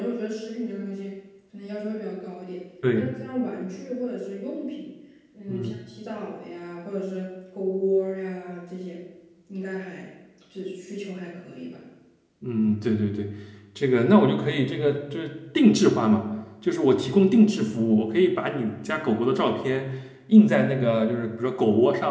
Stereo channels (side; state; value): both; identical; correlation 1.00